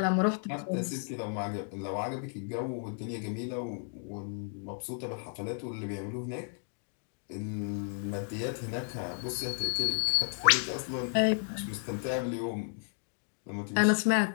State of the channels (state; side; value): silent; right; 56 dB below the other